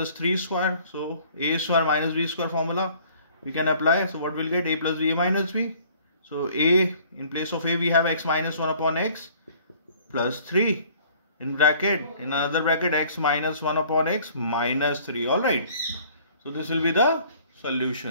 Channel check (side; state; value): both; inverted; correlation -0.54